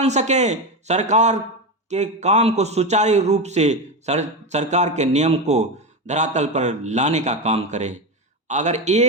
सकें, सरकार के काम को सुचारू रूप से सरकार के नियम को धरातल पर लाने का काम करें। अगर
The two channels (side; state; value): both; normal; correlation 0.16